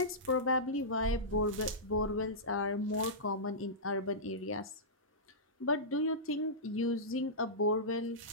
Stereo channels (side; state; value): both; normal; correlation -0.17